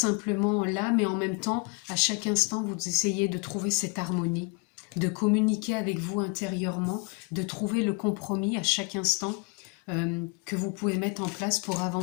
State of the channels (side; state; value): right; quieter; 30.4 dB